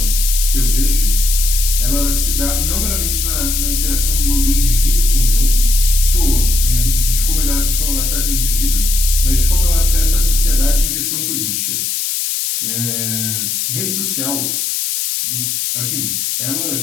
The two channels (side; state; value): left; noise; hiss, 1 dB below the sound